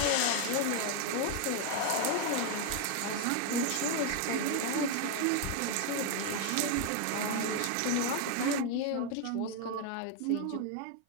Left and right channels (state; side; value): different; both; correlation 0.01